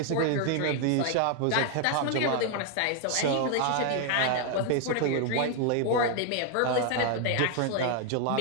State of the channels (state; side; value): different; both; correlation 0.00